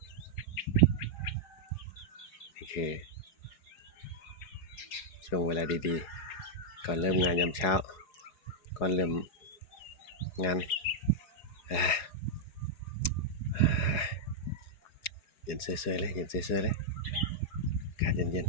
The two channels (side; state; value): right; late; 4.8 ms